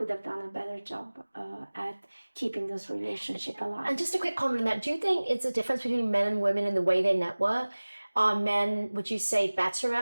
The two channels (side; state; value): both; inverted; correlation -1.00